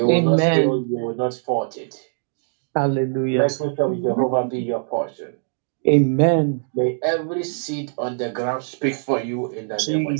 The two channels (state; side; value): silent; left; digital silence